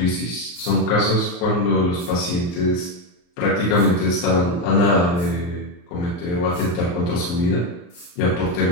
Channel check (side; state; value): right; late; 34 ms